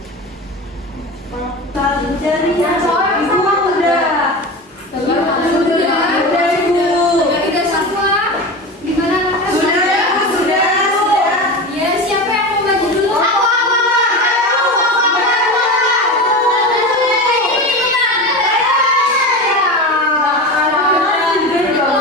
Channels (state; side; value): normal; both; correlation 0.26